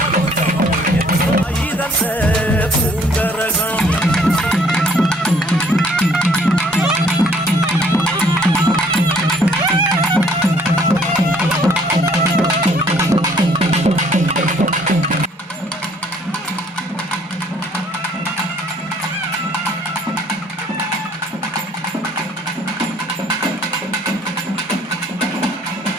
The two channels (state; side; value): normal; both; correlation 0.61